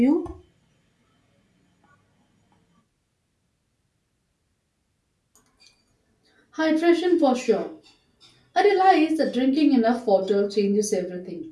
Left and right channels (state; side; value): identical; both; correlation 1.00